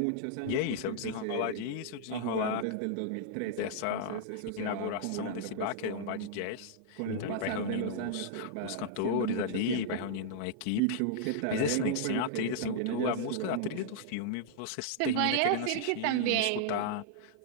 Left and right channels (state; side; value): different; both; correlation -0.02